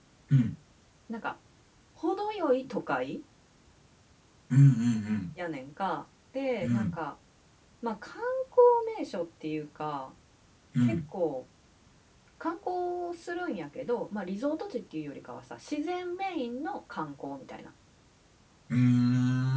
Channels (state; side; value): identical; both; correlation 1.00